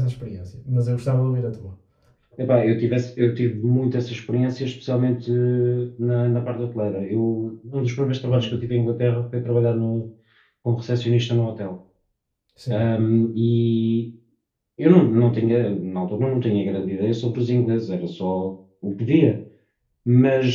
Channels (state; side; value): identical; both; correlation 1.00